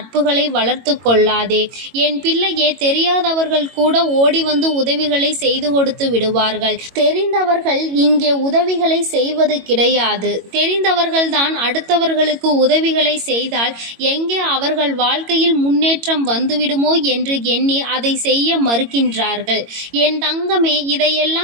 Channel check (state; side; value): late; left; 22 ms